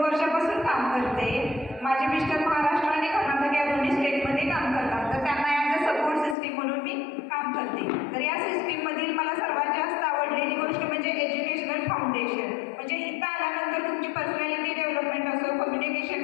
वर्षापासून काम करते. माझे मिस्टर महाराष्ट्र आणि कर्नाटक या दोन्ही स्टेटमध्ये काम करतात, तर त्यांना ॲज अ सपोर्ट सिस्टीम म्हणून मी काम करते. तर या सिस्टीममधील मला सर्वात जास्त आवडलेली गोष्ट म्हणजे एज्युकेशनल फाउंडेशन. म्हणजे इथं आल्यानंतर तुमची पर्सनॅलिटी डेव्हलपमेंट असो,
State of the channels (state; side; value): drops out; right; at 6.4 s